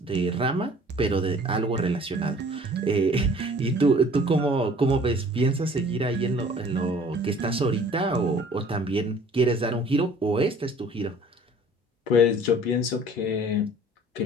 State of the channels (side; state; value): both; normal; correlation 0.51